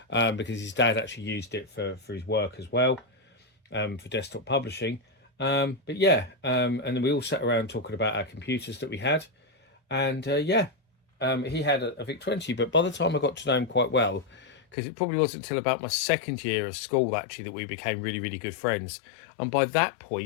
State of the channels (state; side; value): drops out; right; at 14.6 s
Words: because his dad actually used it for his work as well, for desktop publishing. But yeah, and then we all sat around talking about our computers that we had, and yeah, he had a VIC-20, but by the time I got to know him quite well, because it probably wasn't until about my second year of school actually that we became really, really good friends. And by that